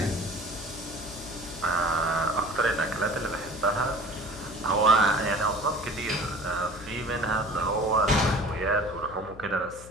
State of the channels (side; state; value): left; noise; hum, 17 dB below the sound